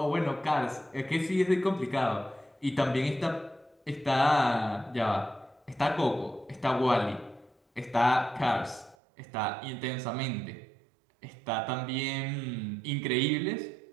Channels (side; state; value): left; drops out; at 9.0 s